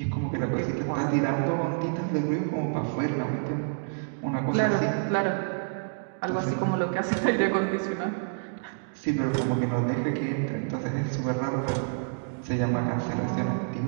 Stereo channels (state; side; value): silent; left; digital silence